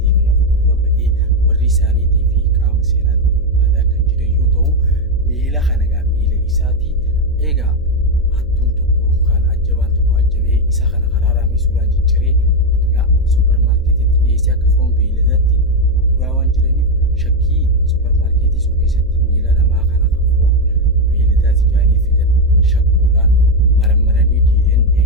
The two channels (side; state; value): left; noise; hum, 21 dB below the sound